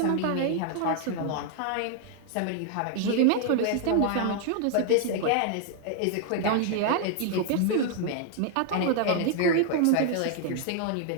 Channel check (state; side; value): different; both; correlation 0.00